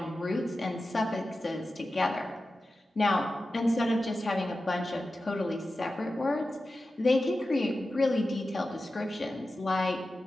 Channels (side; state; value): both; normal; correlation 0.93